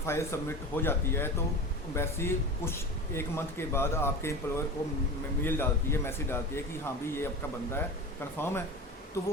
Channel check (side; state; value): both; normal; correlation 0.30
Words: सबमिट हो जाती है तो एम्बेसी कुछ 1 मंथ के बाद आपके एम्प्लॉयर को मेल डालती है, मैसेज डालती है कि हाँ भी ये आपका बंदा है, कंफर्म है। तो